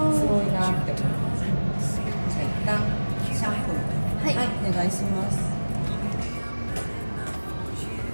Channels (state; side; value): inverted; both; correlation -1.00